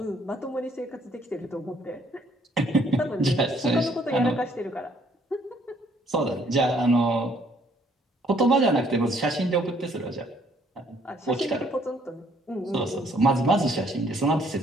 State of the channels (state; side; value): normal; both; correlation 0.64